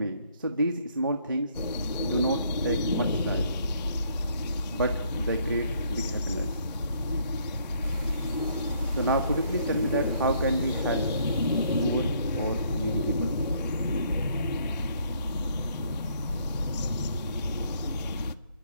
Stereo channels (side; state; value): both; inverted; correlation -0.67